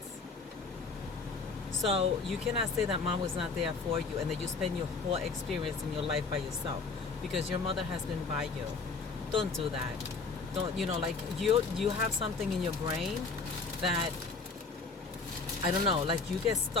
So you cannot say that mom was not there for you and that you spend your whole experience in your life by yourself, because your mother has been by you. Don't do that. Don't, like you have something in your brain that, I don't know, like you get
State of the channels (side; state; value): right; quieter; 4.4 dB